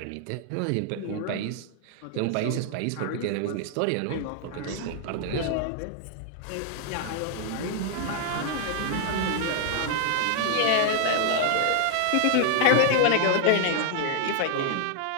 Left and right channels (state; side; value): different; both; correlation 0.00